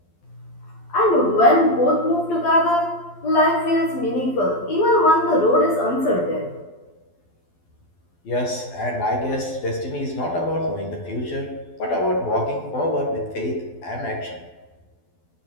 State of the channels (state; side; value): late; right; 12 ms